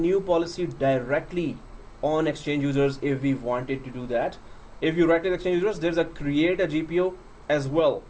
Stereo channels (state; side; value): identical; both; correlation 1.00